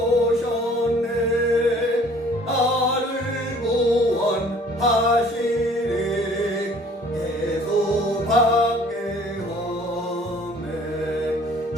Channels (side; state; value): both; normal; correlation 0.54